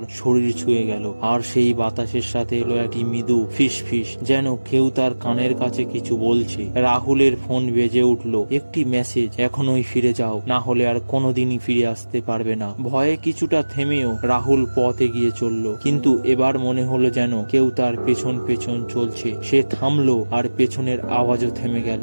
শরীর ছুঁয়ে গেল, আর সেই বাতাসের সাথে এলো একটি মৃদু ফিস ফিস, যেন কেউ তার কানের কাছে কিছু বলছে। রাহুলের ফোন বেজে উঠল। একটি মেসেজ, এখনই ফিরে যাও, না হলে আর কোনোদিনই ফিরে আসতে পারবে না। ভয়ে কিছুটা থেমেও রাহুল পথ এগিয়ে চলল, কিন্তু এবার মনে হলো যেন কেউ তার পেছন পেছন চলছে। সে থামলো, আর পেছনের আওয়াজও থেমে গেল।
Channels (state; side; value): inverted; both; correlation -1.00